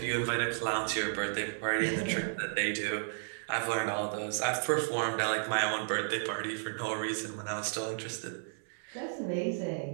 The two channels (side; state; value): left; silent; 56 dB below the other